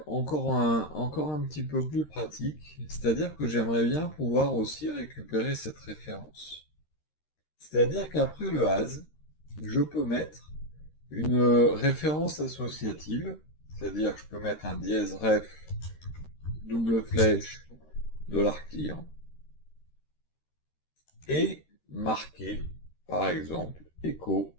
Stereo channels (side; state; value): right; late; 13 ms